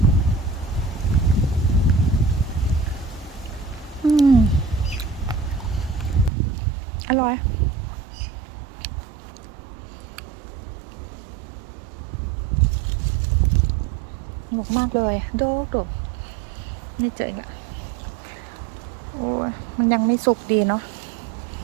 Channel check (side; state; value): left; drops out; at 6.3 s